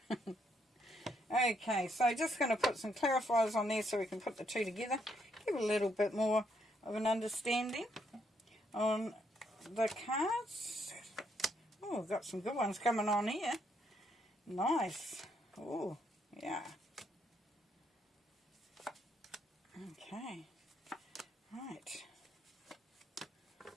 Okay, so just going to put some clarifiers on there so we can put the two together. Give a little bit more of an understanding on the cards. Oh, we've got some good ones coming on here. Nice. Oh, yeah. Okay. Right.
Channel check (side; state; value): both; normal; correlation 0.74